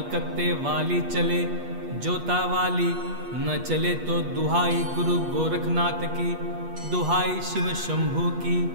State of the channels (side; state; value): left; late; 8.3 ms